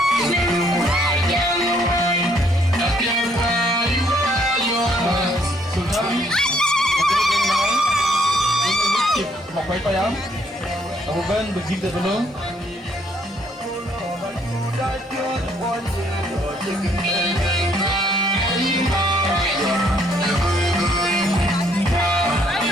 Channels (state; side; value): normal; both; correlation 0.67